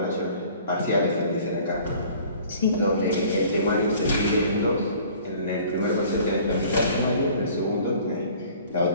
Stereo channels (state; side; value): inverted; both; correlation -0.50